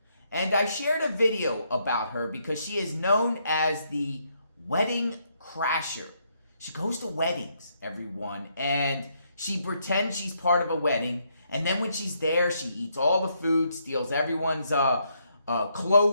And I shared a video about her because she is known as the wedding crasher. She goes to weddings, everyone, and she pretends she's part of a wedding. And then when she's there, she eats all the food, steals everyone's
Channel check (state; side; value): inverted; both; correlation -0.75